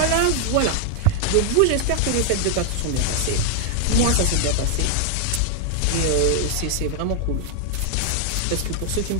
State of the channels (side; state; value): both; different; correlation 0.00